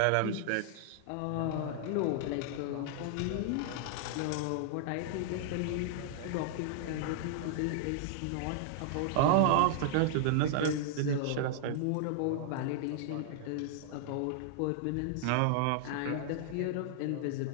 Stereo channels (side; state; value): both; different; correlation -0.01